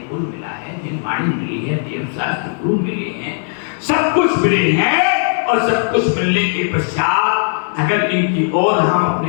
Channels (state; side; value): silent; right; digital silence